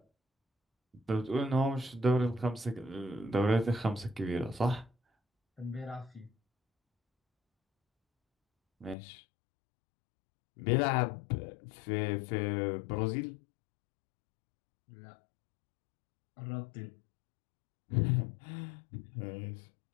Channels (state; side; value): drops out; right; at 9.0 s